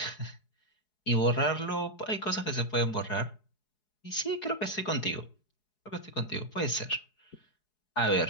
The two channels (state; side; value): late; right; 4.7 ms